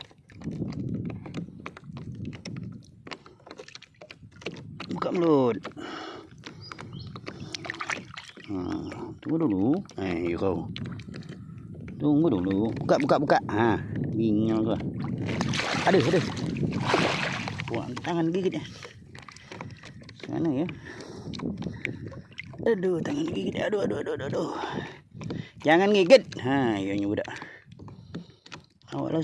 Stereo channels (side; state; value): both; identical; correlation 1.00